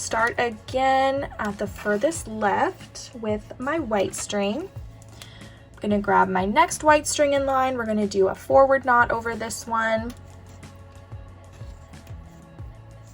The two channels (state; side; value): identical; both; correlation 1.00